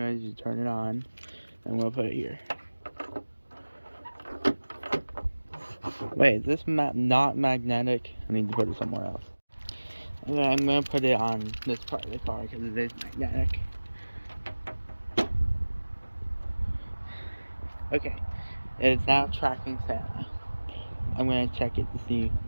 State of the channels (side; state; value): both; inverted; correlation -1.00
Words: you turn it on, and we'll put it here. Wait, is this not magnetic? I need to put it somewhere else. Okay, I'm going to put it on this part of the car because it is magnetic. Okay, it's now tracking Santa. I'm going to check it to see